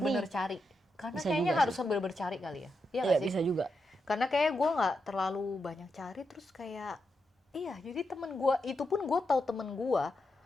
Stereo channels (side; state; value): both; normal; correlation 0.85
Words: Sydney. cari. Karena Bisa kayaknya juga harus sih. bener-bener cari kali ya. Iya Iya, nggak sih? bisa juga. Karena kayak gue nggak terlalu banyak cari terus kayak iya jadi temen gue itu pun gue tahu temen gue